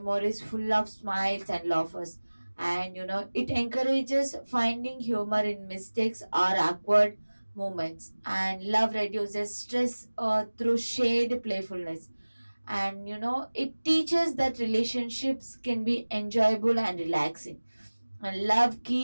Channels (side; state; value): both; inverted; correlation -1.00